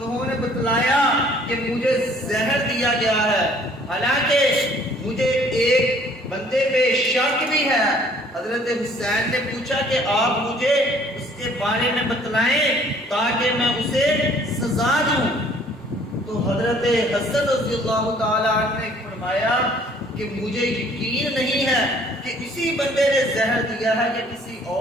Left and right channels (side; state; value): both; normal; correlation 0.57